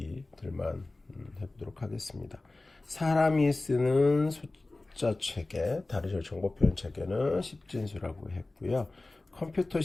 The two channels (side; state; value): right; quieter; 3.0 dB